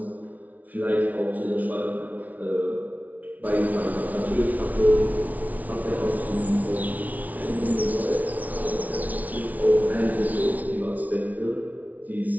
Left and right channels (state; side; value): late; left; 0.074 ms